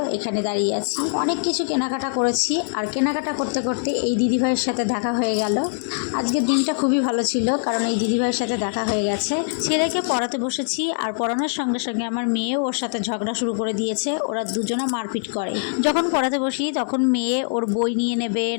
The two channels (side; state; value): right; silent; digital silence